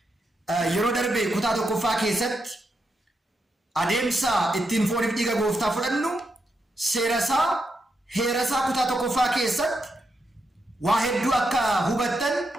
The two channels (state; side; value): normal; both; correlation 0.83